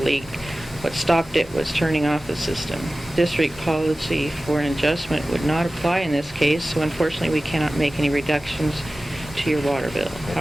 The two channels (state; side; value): normal; both; correlation 0.96